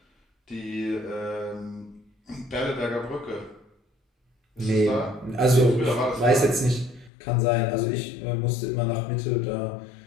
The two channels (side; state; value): right; drops out; at 7.1 s